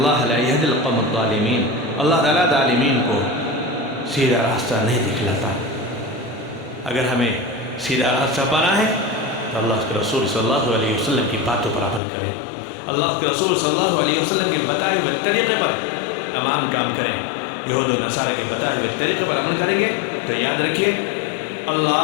لا یہدی القوم الظالمین، اللہ تعالیٰ ظالمین کو سیدھا راستہ نہیں دکھلاتا۔ اگر ہمیں سیدھا راستہ پانا ہے تو اللہ کے رسول صلی اللہ علیہ وسلم کی باتوں پر عمل کریں، اللہ کے رسول صلی اللہ علیہ وسلم کے بتائے ہوئے طریقے پر تمام کام کریں۔ یہود و نصارہ کے بتائے ہوئے طریقے پر عمل کریں گے تو یاد رکھیے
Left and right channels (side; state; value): right; drops out; at 12.0 s